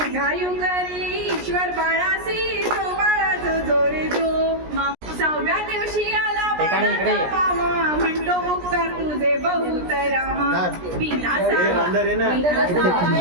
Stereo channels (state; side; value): late; left; 17 ms